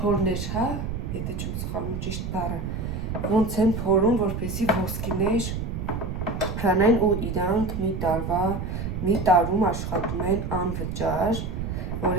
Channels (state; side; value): noise; right; rumble, 4 dB below the sound